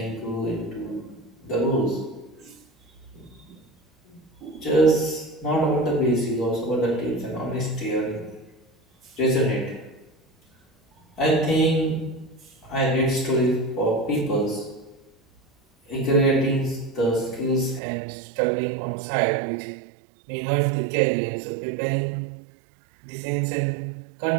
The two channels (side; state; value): left; drops out; at 17.8 s